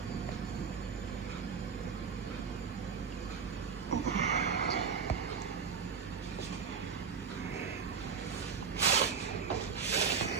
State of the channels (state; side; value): quieter; left; 6.1 dB